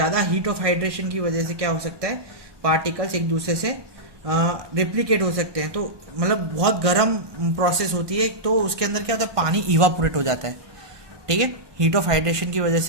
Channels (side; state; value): left; late; 1.2 ms